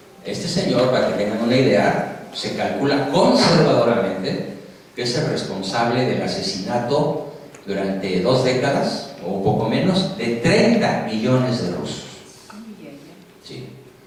Este señor, para que tengan una idea, se calcula conservadoramente que es el responsable del asesinato durante 2 décadas, o un poco menos, de 30 millones de rusos. Sí.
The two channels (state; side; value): identical; both; correlation 1.00